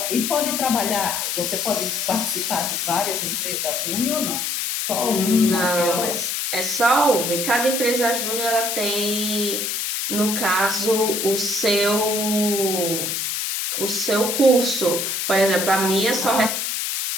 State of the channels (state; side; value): noise; left; hiss, 1 dB below the sound